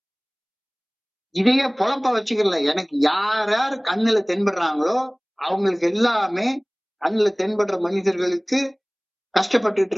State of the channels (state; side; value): identical; both; correlation 1.00